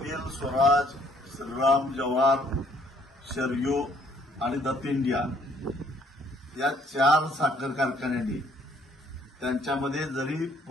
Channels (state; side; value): normal; both; correlation 0.64